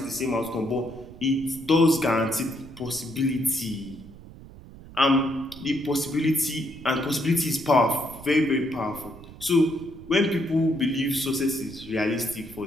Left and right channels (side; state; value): right; noise; rumble, 17 dB below the sound